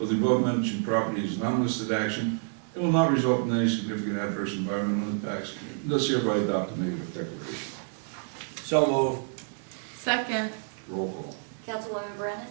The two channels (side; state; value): left; silent; 57 dB below the other